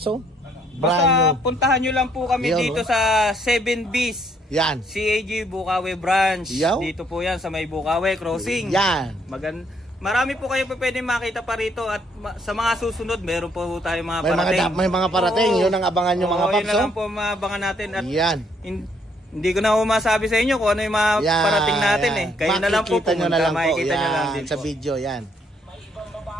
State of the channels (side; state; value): both; normal; correlation 0.69